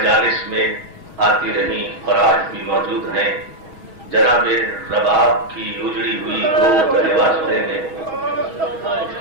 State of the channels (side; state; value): left; late; 6.2 ms